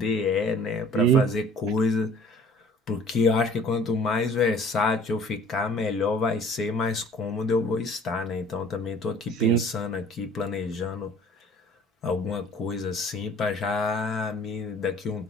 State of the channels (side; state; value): both; normal; correlation 0.51